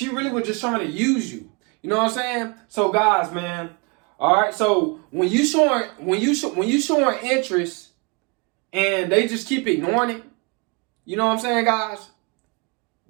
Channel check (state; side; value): quieter; left; 31.3 dB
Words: really was just trying to use you. You know what I'm saying? So guys, man, all right. So when you showing interest and they just keep ignoring it, you know what I'm saying, guys?